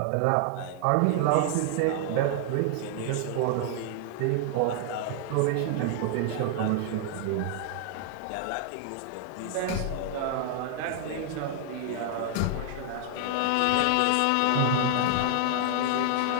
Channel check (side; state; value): both; different; correlation 0.00